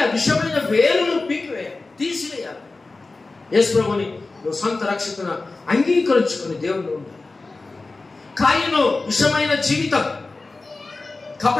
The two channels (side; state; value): right; quieter; 3.5 dB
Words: ఆ విషమైన వేరు నువ్వు తీసివేయాలి. యేసు ప్రభుని నువ్వు సొంత రక్షకుని అంగీకరించుకుని దేవుడు ఉండాలి. కాయను విషమైన జీవితం,